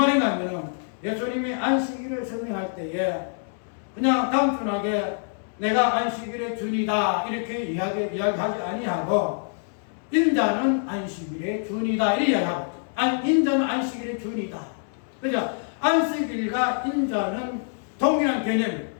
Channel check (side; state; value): right; silent; digital silence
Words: 하면 예수님이 안식일을 설명할 때에 그냥 단순하게 내가 안식일의 주인이다 이렇게 이야기하지 아니하고 인자는 안식일의 주인이다 이렇게 이야기하고 인자는 안식일의 주인이다. 그죠? 안식일과 인자는 동일한 개념이에요.